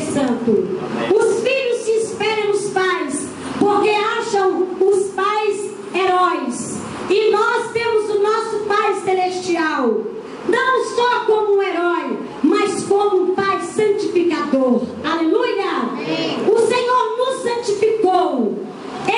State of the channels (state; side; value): identical; both; correlation 1.00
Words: Os filhos se espelham nos pais, porque acham os pais heróis, e nós temos o nosso Pai celestial, não só como um herói, mas como um Pai santificador. Aleluia! O Senhor nos santificou,